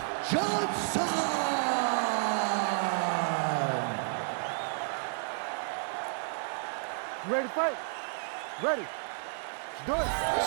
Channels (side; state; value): left; silent; 57 dB below the other